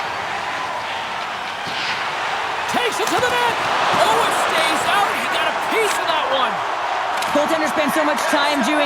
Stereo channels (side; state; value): both; identical; correlation 1.00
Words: Takes it to the net. Oh, it stays out. He got a piece of that one. Goaltender spends so much time